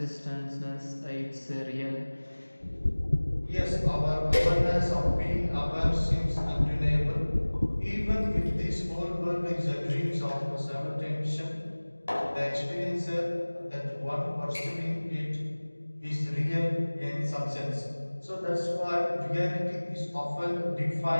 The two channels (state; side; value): inverted; both; correlation -1.00